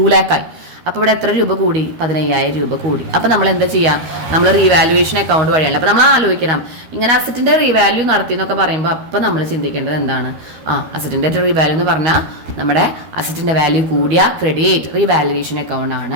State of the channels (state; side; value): late; left; 13 ms